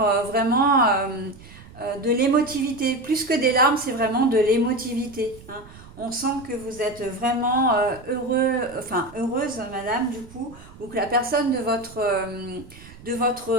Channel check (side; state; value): right; noise; rumble, 20 dB below the sound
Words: vraiment de l'émotivité. Plus que des larmes, c'est vraiment de l'émotivité, hein. On sent que vous êtes vraiment heureuse, madame, du coup, ou que la personne de votre, euh,